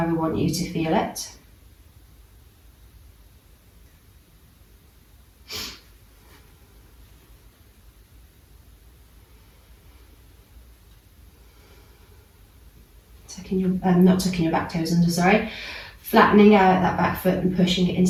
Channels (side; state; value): both; identical; correlation 1.00